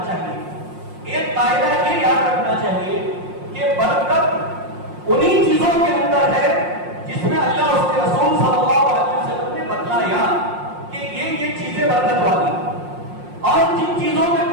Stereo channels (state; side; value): late; left; 5.6 ms